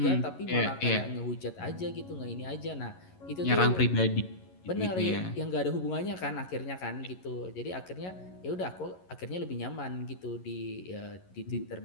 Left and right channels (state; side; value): late; right; 11 ms